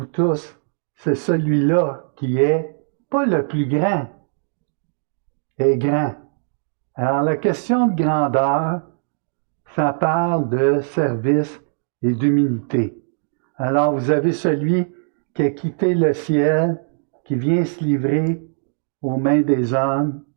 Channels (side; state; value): left; silent; digital silence